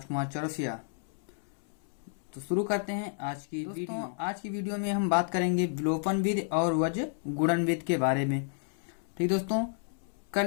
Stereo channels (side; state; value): right; silent; 57 dB below the other